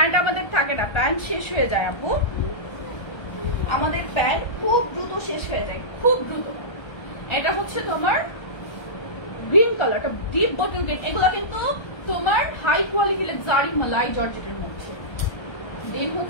আমাদের থাকে না, প্যান্ট শেষ হয়ে যায় আপু, আমাদের প্যান্ট খুব দ্রুত শেষ হয়ে যায়, খুব দ্রুত। এটা হচ্ছে তোমার গ্রিন কালারটা, ডিপ বটল গ্রিন। এগুলো কিন্তু তোমার হাই কোয়ালিটি লাক্সারি মালাই জর্জেটের মধ্যে। দেন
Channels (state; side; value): late; right; 1.3 ms